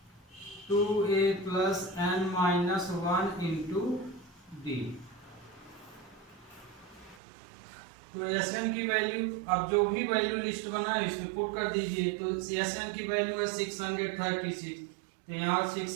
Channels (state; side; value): drops out; left; at 7.2 s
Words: 2a plus n minus 1 into d। तो SN की वैल्यू, अब जो भी वैल्यू लिस्ट बनाए इसमें पुट कर दीजिए। तो SN की वैल्यू है 636, तो यहाँ